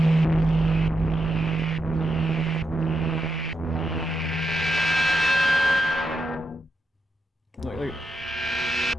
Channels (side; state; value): both; normal; correlation 0.84